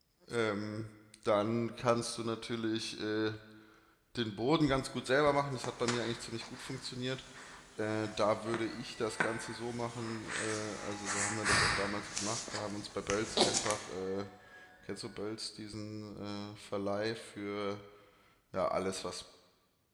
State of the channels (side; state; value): both; identical; correlation 1.00